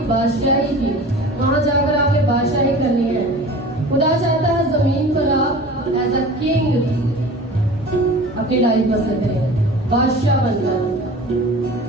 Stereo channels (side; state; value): both; normal; correlation 0.39